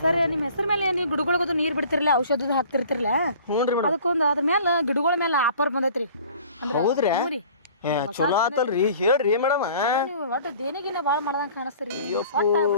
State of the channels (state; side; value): inverted; both; correlation -0.49